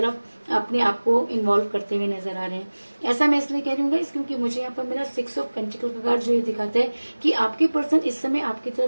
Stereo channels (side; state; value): both; inverted; correlation -1.00